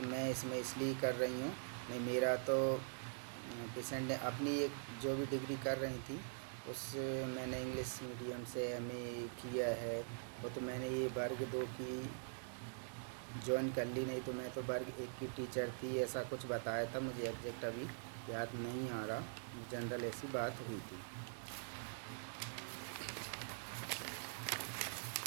मैं इसमें इसलिए कर रही हूँ। नहीं, मेरा तो पेशेंट ने अपनी एक जो भी डिग्री कर रही थी उस मैंने इंग्लिश मीडियम से एमए किया है। वो तो मैंने ये वर्ग 2 की ज्वाइन कर ली, नहीं तो मैं तो वर्ग 1 की टीचर थी, ऐसा कुछ बताया था। मुझे एग्जैक्ट अभी याद नहीं आ रहा, जनरल ऐसी बात हुई थी।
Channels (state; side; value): silent; left; digital silence